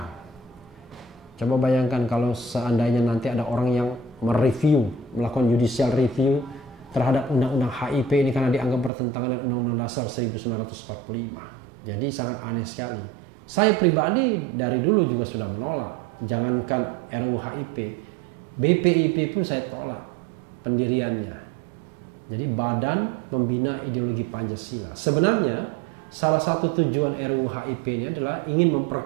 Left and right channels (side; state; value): left; drops out; at 8.9 s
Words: Coba bayangkan kalau seandainya nanti ada orang yang mereview, melakukan judicial review terhadap Undang-Undang HIP ini karena dianggap bertentangan dengan Undang-Undang Dasar 1945. Jadi sangat aneh sekali. Saya pribadi dari dulu juga sudah menolak. Jangankan RUU HIP, BPIP pun saya tolak pendiriannya. Jadi Badan Pembina Ideologi Pancasila. Sebenarnya salah satu tujuan RUU HIP ini adalah ingin